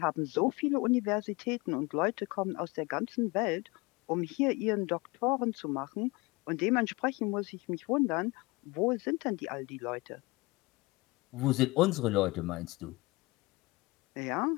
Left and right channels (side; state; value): right; quieter; 23.7 dB